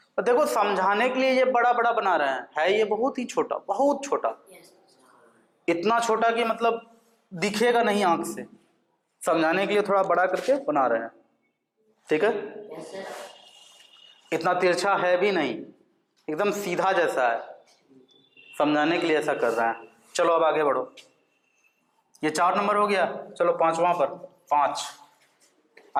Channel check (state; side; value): identical; both; correlation 1.00